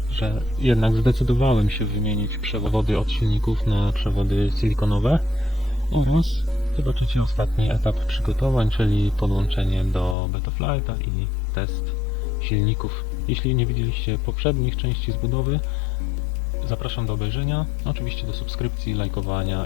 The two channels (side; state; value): right; drops out; at 10.2 s